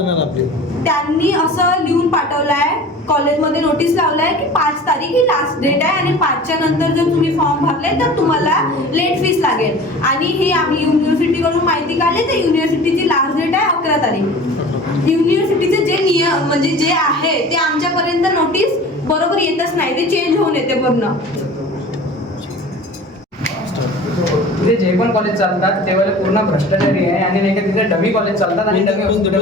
आपली. त्यांनी असं लिहून पाठवलं आहे, कॉलेजमध्ये नोटीस लावलं आहे की 5 तारीख ही लास्ट डेट आहे आणि 5च्या नंतर जर तुम्ही फॉर्म भरले तर तुम्हाला लेट फीस लागेल. आणि हे आम्ही युनिव्हर्सिटीकडून माहिती काढली तर युनिव्हर्सिटीची लास्ट डेट आहे 11 तारीख. युनिव्हर्सिटीचे जे नियम म्हणजे जे आहे ते आमच्यापर्यंत नोटीस बरोबर येतच नाही, ते चेंज होऊन येते पूर्ण. तिथे जे पण कॉलेज चालतात तेव्हा पूर्ण भ्रष्टाचारी आहे आणि नाही का तिथे डमी कॉलेज चालतात आणि dummy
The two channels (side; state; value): both; normal; correlation 0.40